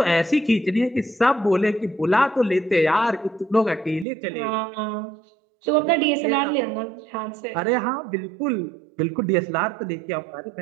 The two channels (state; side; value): drops out; left; at 4.0 s